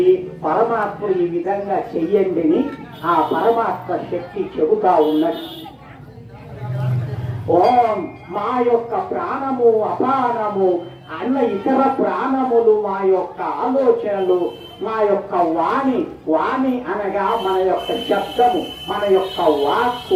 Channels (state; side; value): identical; both; correlation 1.00